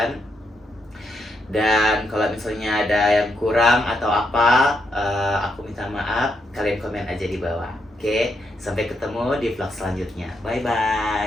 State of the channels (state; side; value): normal; both; correlation 0.79